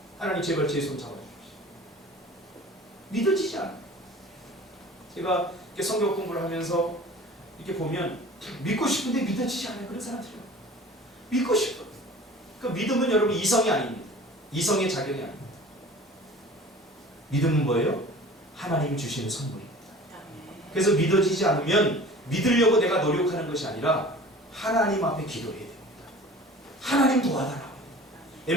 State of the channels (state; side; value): normal; both; correlation 0.43